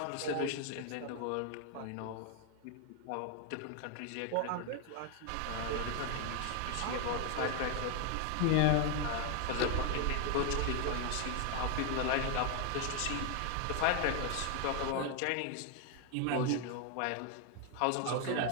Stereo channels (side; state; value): both; different; correlation 0.01